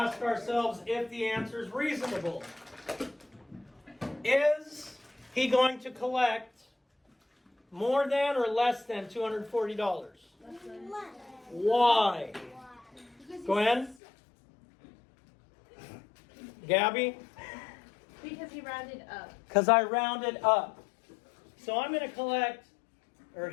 ourselves if the answer is reasonable. Is he going to collect more than or less than $240? Why? Gwen? Gabby? Because he rounded up. Because I rounded up. So I'm going to collect, or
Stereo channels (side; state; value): right; drops out; at 14.0 s